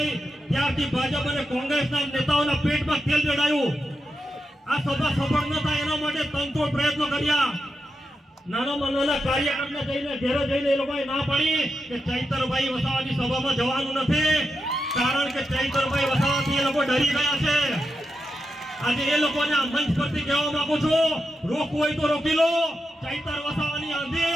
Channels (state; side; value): normal; both; correlation 0.87